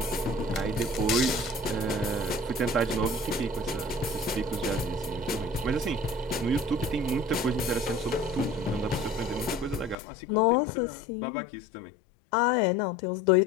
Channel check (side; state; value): right; drops out; at 10.0 s